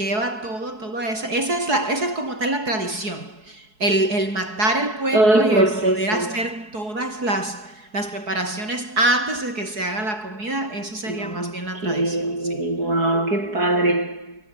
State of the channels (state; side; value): late; left; 4.7 ms